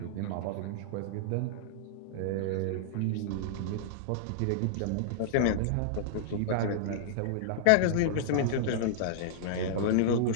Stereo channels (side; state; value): both; different; correlation -0.02